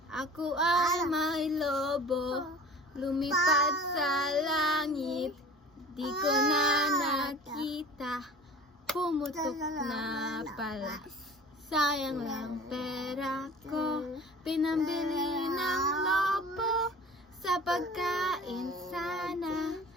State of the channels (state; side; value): normal; both; correlation 0.42